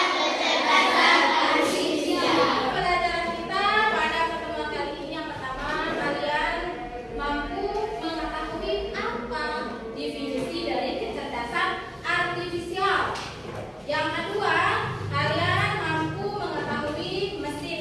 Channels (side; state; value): both; identical; correlation 1.00